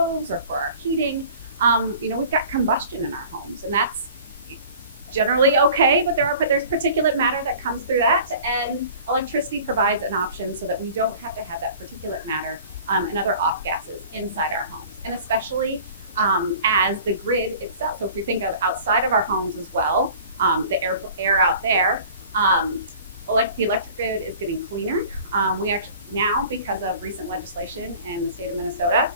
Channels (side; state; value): both; inverted; correlation -0.45